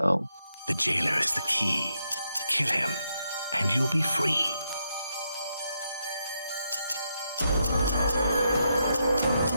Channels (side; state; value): both; inverted; correlation -0.81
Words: The jailer is the key. Kill him, and you'll be free.